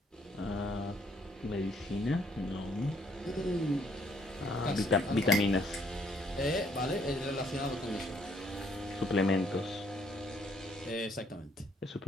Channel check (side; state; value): both; normal; correlation 0.67